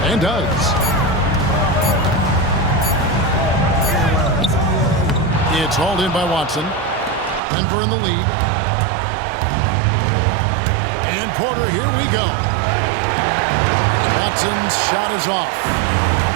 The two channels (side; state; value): left; drops out; at 7.4 s